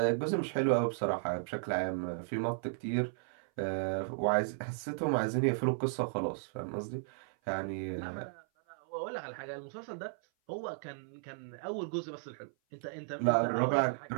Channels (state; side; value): silent; left; 55 dB below the other